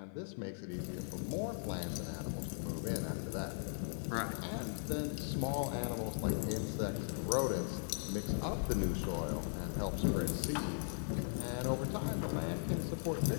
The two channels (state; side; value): silent; right; 52 dB below the other